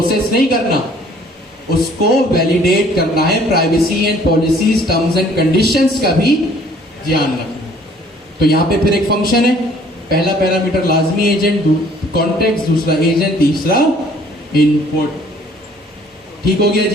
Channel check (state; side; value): normal; both; correlation 0.57